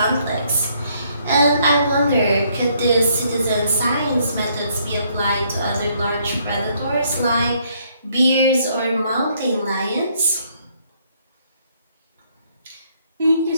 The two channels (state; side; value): inverted; both; correlation -0.68